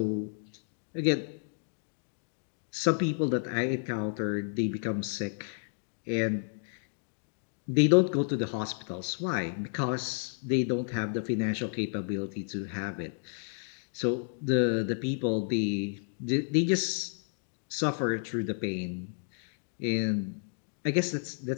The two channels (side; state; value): right; silent; digital silence